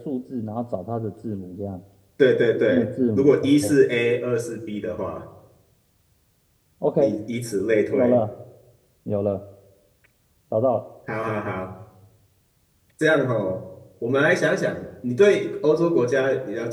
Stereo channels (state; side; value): identical; both; correlation 1.00